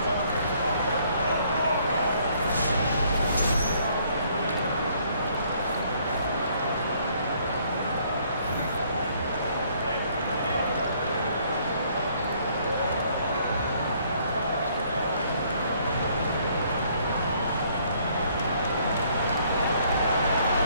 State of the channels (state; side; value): inverted; both; correlation -0.64